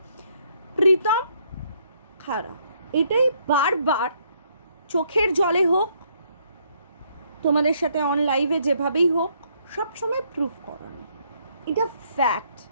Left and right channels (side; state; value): both; inverted; correlation -0.70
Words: প্রীতম খারাপ। এটাই বারবার চোখের জলে হোক, তোমাদের সাথে অন লাইভে যেভাবেই হোক, সবসময় প্রুফ করানো। এটা ফ্যাক্ট।